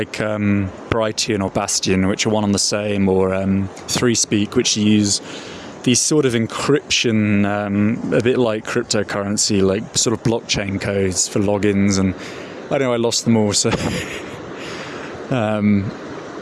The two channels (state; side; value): identical; both; correlation 1.00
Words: Brighton or Bastion, which are one on the same, or 3Speak, which use these sort of encryption, a bit like cryptocurrency, like sort of blockchain codes for logins. And I know I lost them all, so